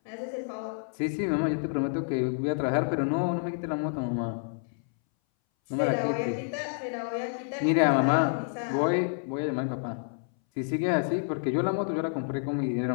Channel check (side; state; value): right; silent; 59 dB below the other